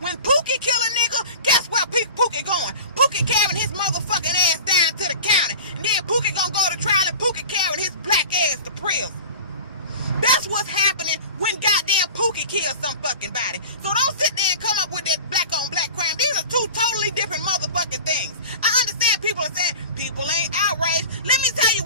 When Pookie kill a nigga, guess where Pookie going? Pookie carrying his motherfucking ass down to the county. And then Pookie gonna go to trial and Pookie carrying his black ass to prison. That's what's happening when goddamn Pookie kills some fucking body. So don't sit there and come up with that black on black crime. These are two totally different motherfucking things. I understand people are saying people ain't outraged. Let me tell you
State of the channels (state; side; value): inverted; both; correlation -0.37